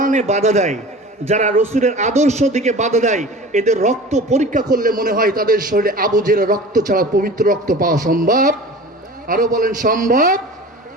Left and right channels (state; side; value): normal; both; correlation 0.38